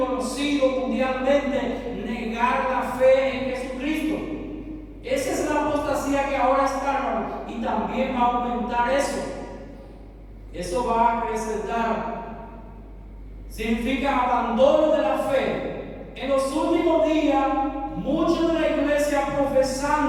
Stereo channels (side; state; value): both; identical; correlation 1.00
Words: mundialmente negar la fe en Jesucristo. Esa es la apostasía que ahora está, hermano, y también va a aumentar eso. Eso va a acrecentar. Significa abandono de la fe. En los últimos días, muchos de la iglesia